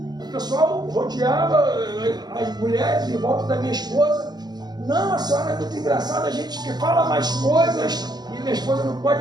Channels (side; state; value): left; late; 0.20 ms